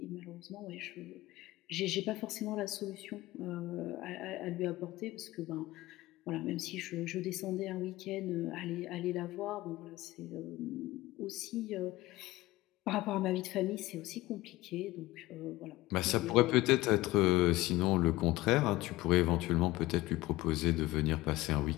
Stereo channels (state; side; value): quieter; right; 18.6 dB